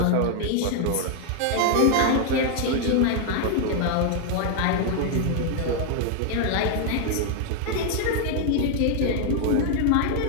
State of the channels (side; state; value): both; different; correlation 0.00